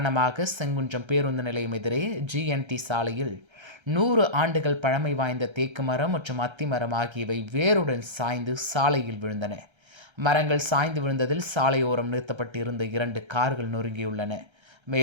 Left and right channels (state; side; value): late; left; 1.3 ms